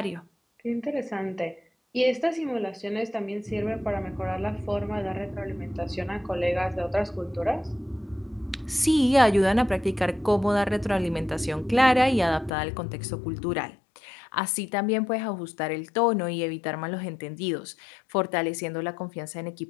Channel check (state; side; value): drops out; right; at 12.5 s